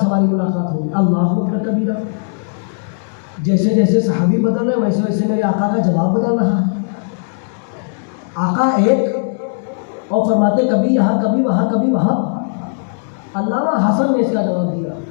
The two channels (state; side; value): silent; right; digital silence